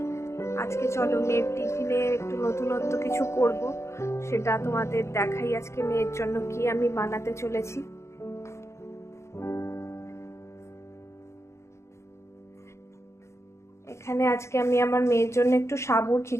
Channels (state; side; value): late; right; 0.13 ms